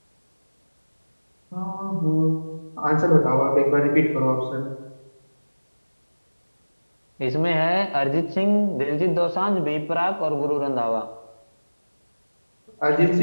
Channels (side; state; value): both; inverted; correlation -1.00